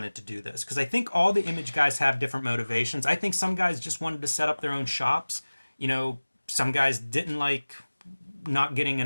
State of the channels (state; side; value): inverted; both; correlation -1.00